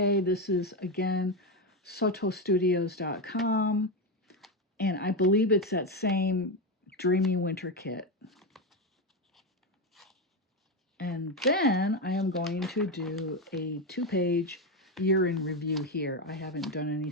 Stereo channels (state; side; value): normal; both; correlation 0.11